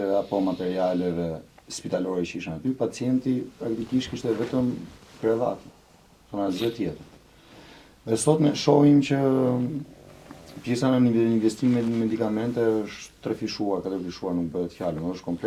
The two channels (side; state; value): both; identical; correlation 1.00